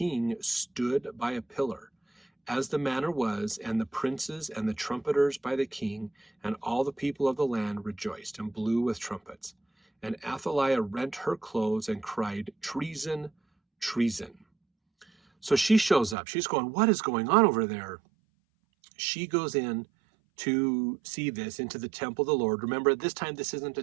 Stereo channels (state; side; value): drops out; left; at 16.2 s